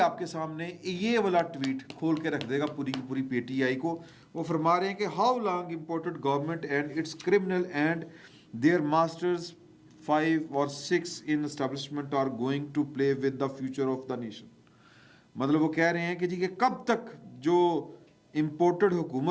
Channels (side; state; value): both; identical; correlation 1.00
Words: کے سامنے یہ والا ٹویٹ کھول کے رکھ دے گا پوری کی پوری پی ٹی آئی کو. وہ فرما رہے ہیں کہ how long imported government and its criminal and their masters 5 or 6 in establishment are going to play with the future of the nation. مطلب وہ کہہ رہے ہیں کہ جی کہ کب تک جو امپورٹڈ